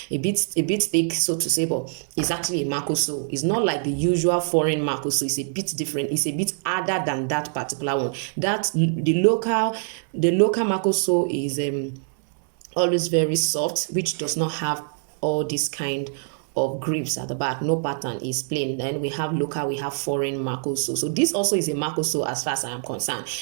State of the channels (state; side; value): silent; left; 62 dB below the other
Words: a bit thick, so to say, but it's actually a Marco sole. It's not like the usual foreign Marco sole. It's a bit different. It's a bit harder than that particular one. That the local Marco sole is always very soft, which does not have all this kind of grips at the back. No pattern, is plain. Then we have local, we have foreign Marco sole. So this also is a Marco sole as far as I am concerned,